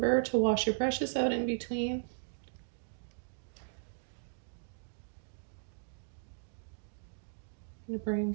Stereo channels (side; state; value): left; silent; digital silence